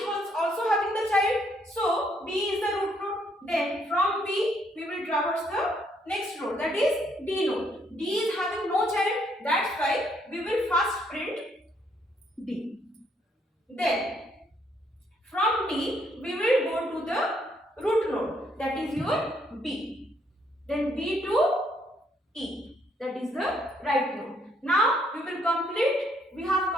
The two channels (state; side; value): normal; both; correlation 0.70